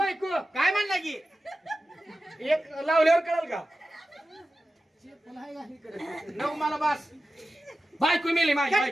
काय म्हणला की एक लावल्यावर कळल का. नऊ मला बस. बायको मेली माझी कट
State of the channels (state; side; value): normal; both; correlation 0.93